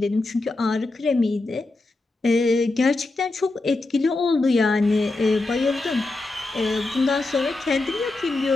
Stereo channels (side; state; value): right; quieter; 3.1 dB